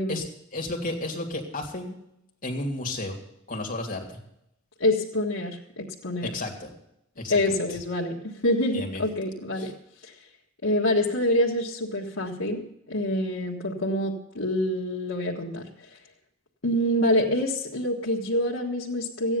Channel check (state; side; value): normal; both; correlation -0.05